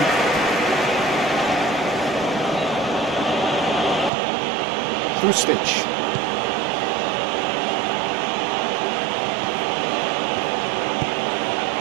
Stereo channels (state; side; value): drops out; left; at 4.1 s